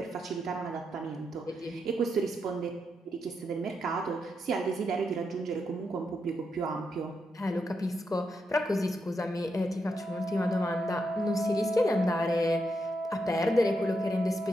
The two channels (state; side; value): normal; both; correlation 0.83